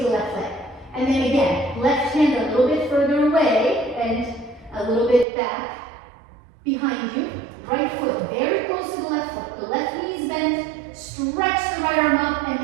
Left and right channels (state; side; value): drops out; left; at 5.2 s